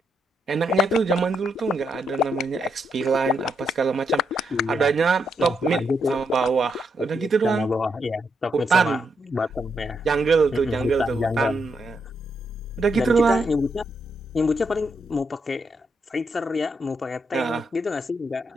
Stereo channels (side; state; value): both; normal; correlation 0.80